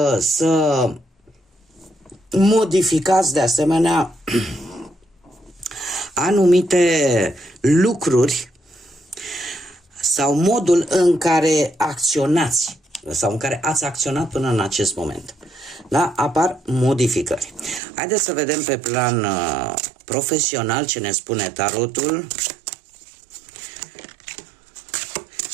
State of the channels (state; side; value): drops out; left; at 17.8 s